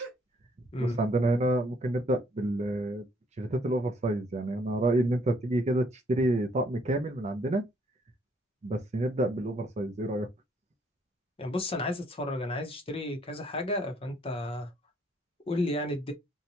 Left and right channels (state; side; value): normal; both; correlation 0.67